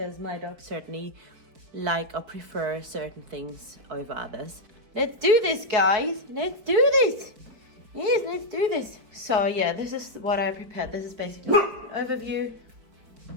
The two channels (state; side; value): late; left; 4.6 ms